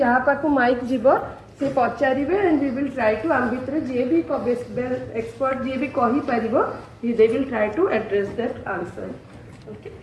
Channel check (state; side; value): identical; both; correlation 1.00